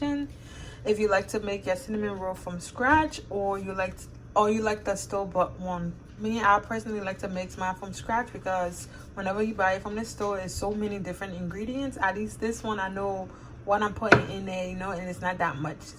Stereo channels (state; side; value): identical; both; correlation 1.00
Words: if you like to make your cinnamon roll from scratch, or you like the store-bought one. Me, I personally like to make mine from scratch, because whenever you buy it from the store, there's so many different ingredients. At least this one, I know what I'm putting in there, you know, and it's not that much.